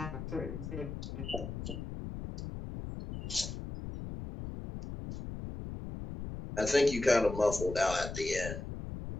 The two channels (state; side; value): noise; left; rumble, 8 dB below the sound